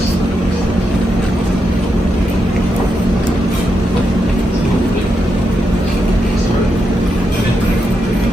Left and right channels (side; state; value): both; normal; correlation 0.84